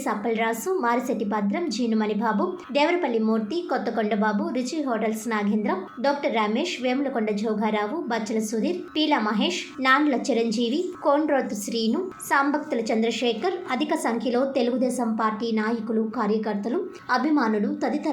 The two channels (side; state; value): both; identical; correlation 1.00